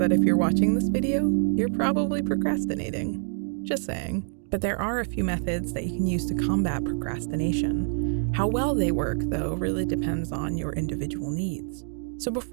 if you're watching this video, you're probably procrastinating. Just saying. But there are a few methods that you can use to combat procrastination. How well they work, though, really depends on your individual needs. So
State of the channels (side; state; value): left; silent; digital silence